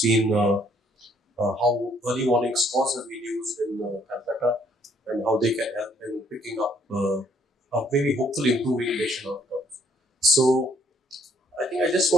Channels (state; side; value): normal; both; correlation 0.65